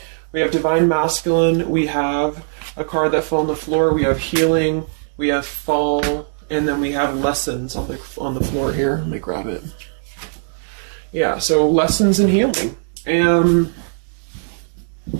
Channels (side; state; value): left; silent; digital silence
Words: We have Divine Masculine, we have a card that fell on the floor, we have healing, we have fall, and then we have lessons on the floor here. Let me grab it. Yeah, so lessons and healing. And